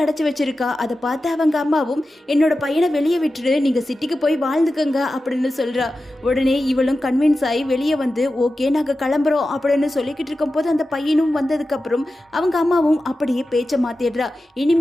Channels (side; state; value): both; normal; correlation 0.93